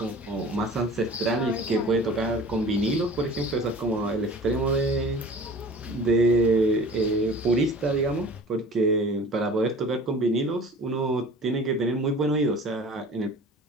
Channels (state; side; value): normal; both; correlation 0.43